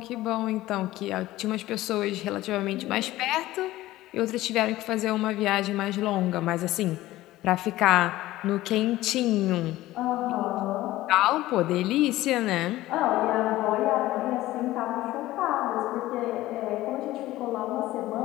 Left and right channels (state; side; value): quieter; right; 16.4 dB